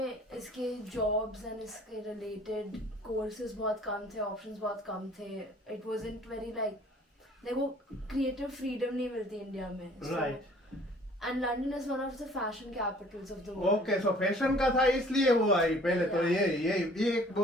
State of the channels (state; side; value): normal; both; correlation 0.53